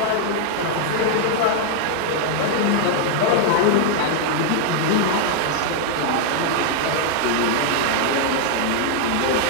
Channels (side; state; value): both; different; correlation 0.00